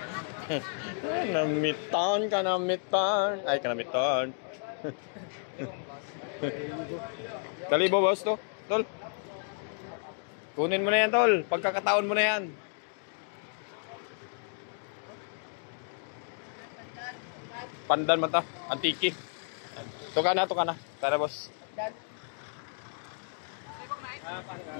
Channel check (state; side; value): silent; right; 57 dB below the other